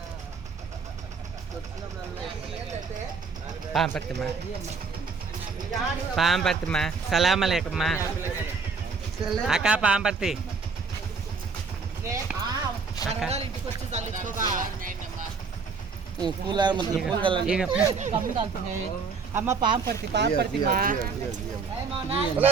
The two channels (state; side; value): quieter; left; 5.0 dB